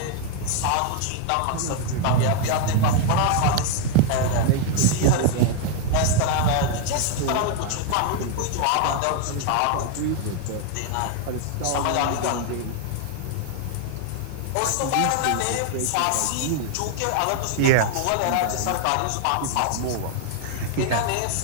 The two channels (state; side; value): different; both; correlation 0.00